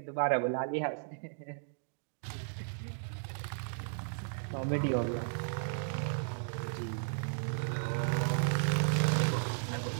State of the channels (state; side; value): silent; left; digital silence